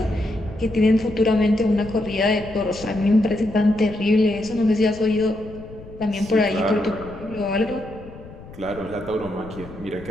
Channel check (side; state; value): left; noise; rumble, 17 dB below the sound